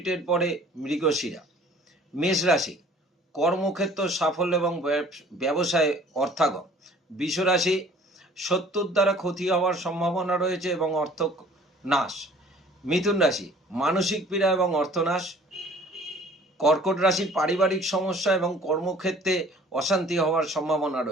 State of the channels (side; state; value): both; normal; correlation 0.52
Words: পরে মৃগশিরা। মেষ রাশি, কর্মক্ষেত্র সাফল্য এবং ব্যবসায় অর্থাগম। বৃষ রাশি, শত্রুর দ্বারা ক্ষতি হওয়ার সম্ভাবনা রয়েছে এবং অর্থ নাশ। মিথুন রাশি, মানসিক পীড়া এবং অর্থনাশ। কর্কট রাশি, পারিবারিক সমস্যা এবং কর্মক্ষেত্রে অশান্তি হওয়ার সম্ভাবনা